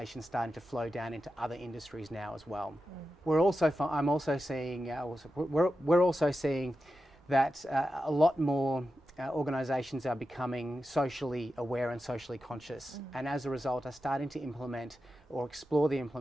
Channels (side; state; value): both; normal; correlation 0.91